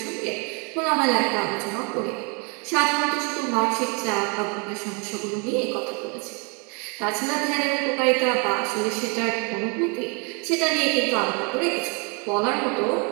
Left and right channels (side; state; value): left; quieter; 33.9 dB